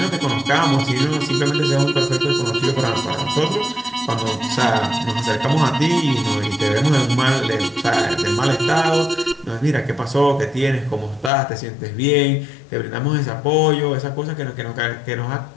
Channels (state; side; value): drops out; right; at 11.3 s